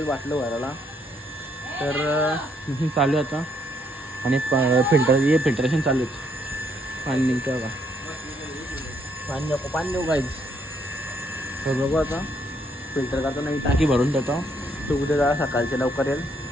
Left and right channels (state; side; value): normal; both; correlation 0.71